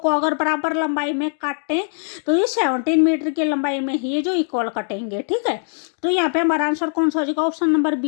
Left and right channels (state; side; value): silent; right; digital silence